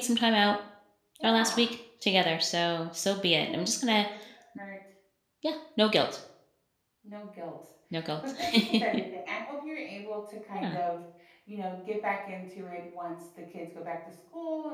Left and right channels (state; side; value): identical; both; correlation 1.00